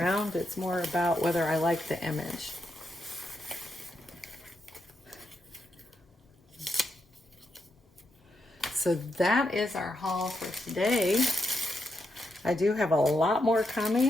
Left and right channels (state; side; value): normal; both; correlation 0.82